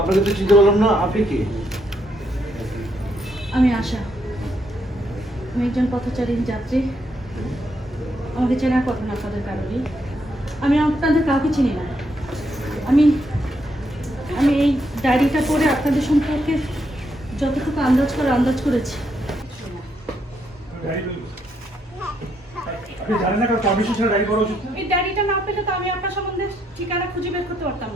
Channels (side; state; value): both; normal; correlation 0.76